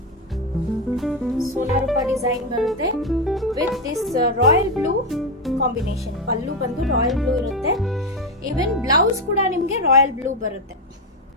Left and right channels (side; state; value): both; normal; correlation 0.09